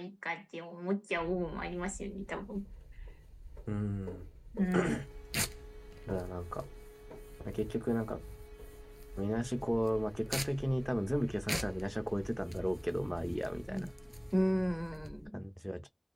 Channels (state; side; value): identical; both; correlation 1.00